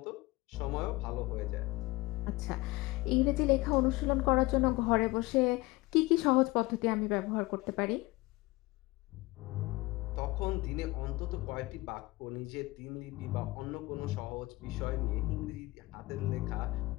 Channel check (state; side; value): quieter; right; 21.6 dB